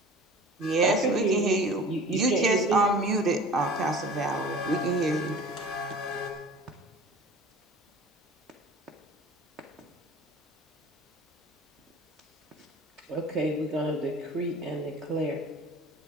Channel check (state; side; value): normal; both; correlation 0.42